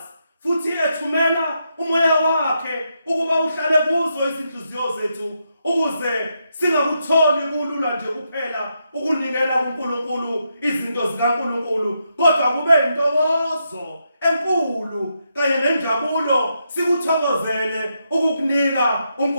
futhi ethumela umoya wakhe ukuba uhlale kuzo izinhliziyo zethu, ukuze singakutholi kulula nje kuphela ukunikela kuNkulunkulu izinto zikaNkulunkulu, kodwa kube intokozo enkulu kanye nenjabulo sikuthokozele ukukunika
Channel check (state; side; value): inverted; both; correlation -0.82